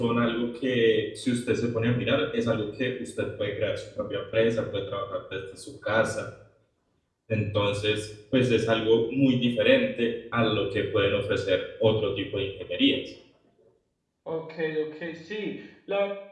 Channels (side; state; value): both; identical; correlation 1.00